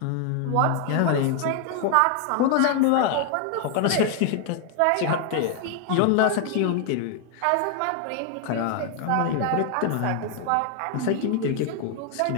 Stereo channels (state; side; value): different; both; correlation 0.00